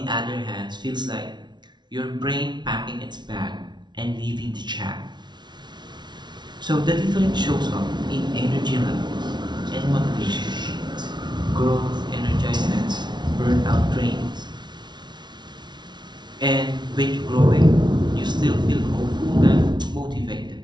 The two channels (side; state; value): left; late; 0.21 ms